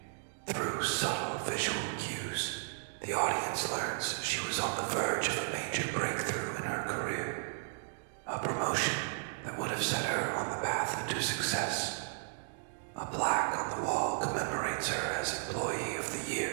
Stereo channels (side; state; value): left; silent; digital silence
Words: Through subtle visual cues, the audience learns she was on the verge of a major breakthrough in her career. A promotion that would have set her on the path to success. A plaque on the wall commemorates her as Employee of the